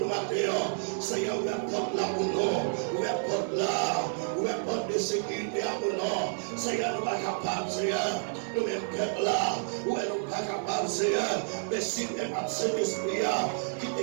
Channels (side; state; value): left; silent; 58 dB below the other